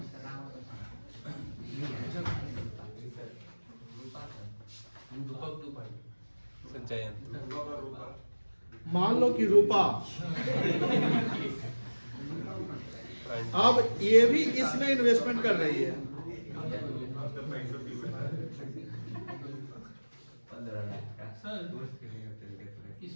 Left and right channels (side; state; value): both; inverted; correlation -1.00